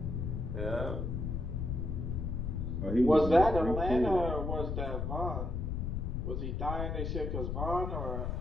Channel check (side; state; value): left; noise; rumble, 2 dB below the sound